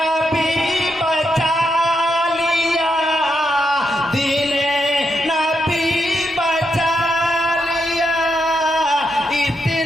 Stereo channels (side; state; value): both; normal; correlation 0.82